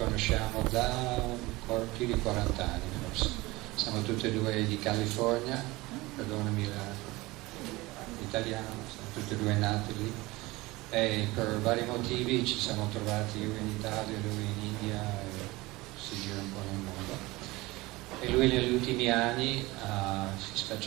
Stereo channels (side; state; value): left; quieter; 21.0 dB